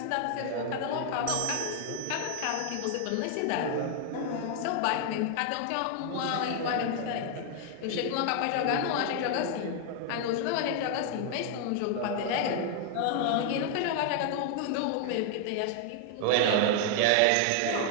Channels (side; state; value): both; different; correlation 0.00